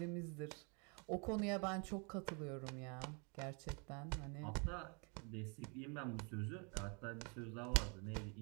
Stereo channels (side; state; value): left; quieter; 35.2 dB